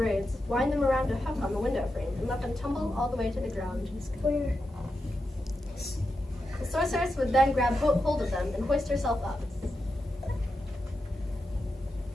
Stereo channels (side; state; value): both; normal; correlation 0.88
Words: wind them around a hook on the window frame, and let them tumble all the way to the ground. The sorceress would then grab hold of them and hoist herself up.